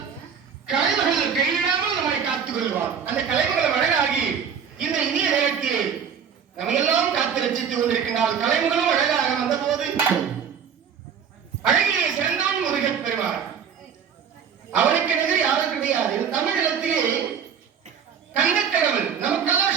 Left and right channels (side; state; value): left; quieter; 7.3 dB